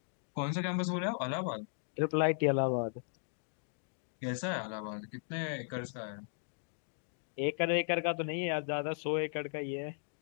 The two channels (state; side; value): silent; right; digital silence